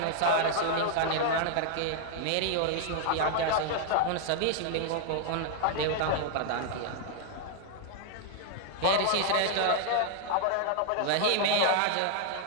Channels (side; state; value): both; different; correlation 0.00